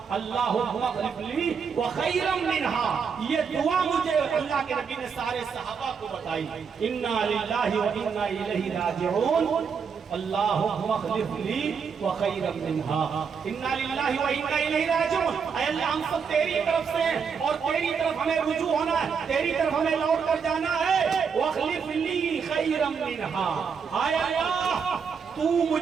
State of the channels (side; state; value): left; quieter; 6.2 dB